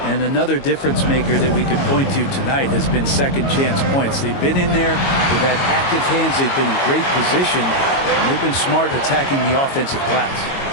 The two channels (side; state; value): right; late; 22 ms